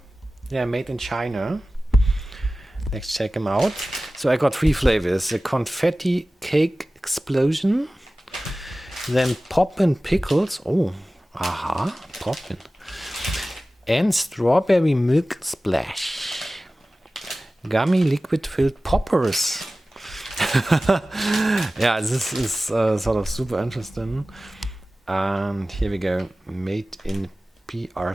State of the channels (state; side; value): normal; both; correlation 0.96